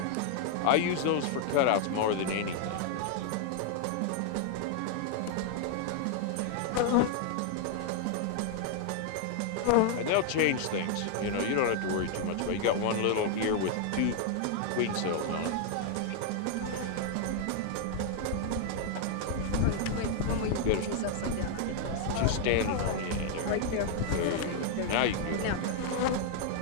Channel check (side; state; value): both; different; correlation 0.00